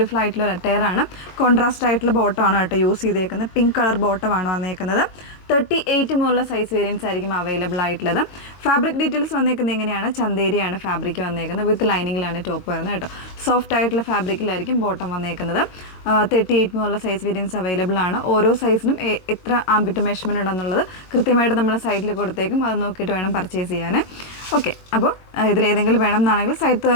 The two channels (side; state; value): right; late; 22 ms